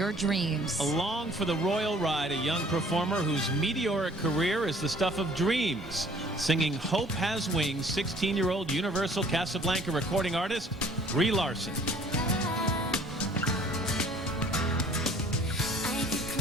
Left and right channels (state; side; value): normal; both; correlation 0.55